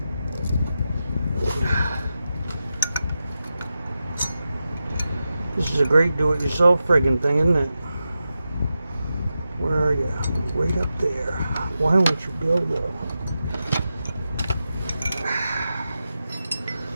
This is a great do-it-yourself friggin' thing, isn't it? Where are you? Right up there. Why won't you go, though?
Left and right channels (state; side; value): inverted; both; correlation -0.90